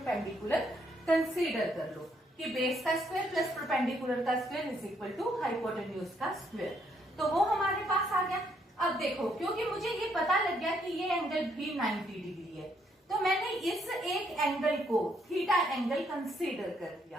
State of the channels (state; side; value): normal; both; correlation 0.72